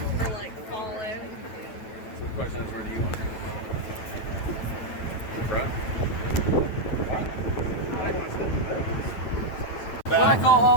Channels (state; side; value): late; right; 9.0 ms